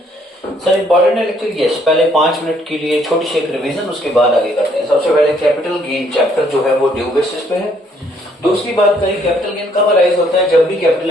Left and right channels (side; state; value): both; normal; correlation 0.66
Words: सर इंपॉर्टेंट है लेक्चर, यस। पहले 5 मिनट के लिए छोटी सी एक रिवीजन, उसके बाद आगे करते हैं। सबसे पहले कैपिटल गेन चैप्टर जो है वो ड्यू बेसिस पे है। दूसरी बात करें कैपिटल गेन कब अराइज होता है, जब भी कैपिटल